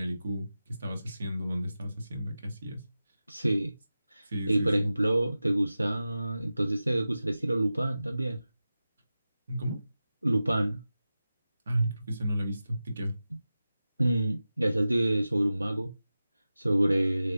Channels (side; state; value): both; inverted; correlation -0.94